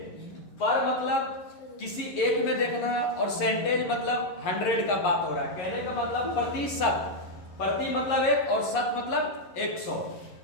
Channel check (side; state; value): right; late; 11 ms